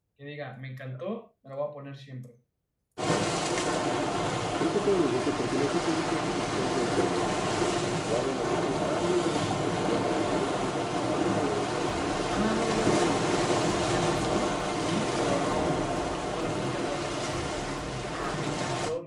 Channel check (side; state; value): both; identical; correlation 1.00